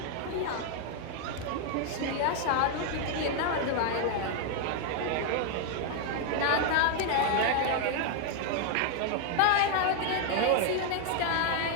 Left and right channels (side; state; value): both; different; correlation 0.01